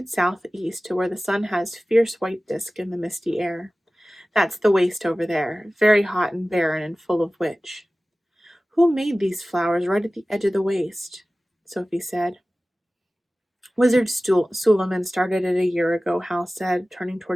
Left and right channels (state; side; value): normal; both; correlation 0.97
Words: southeast to where the sun has fierce white disk in the misty air. That's the waste over there, very hot and barren and full of witch. Who made these flowers right at the edge of the waste? Sophie said. Wizard Suleiman started it a year ago, Howl said, turning